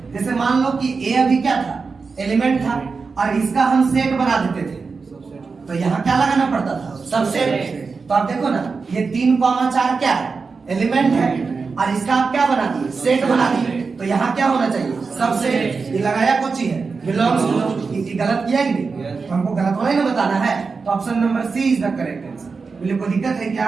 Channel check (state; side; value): quieter; left; 4.7 dB